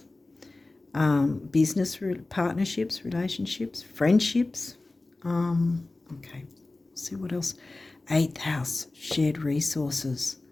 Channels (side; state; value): right; quieter; 3.1 dB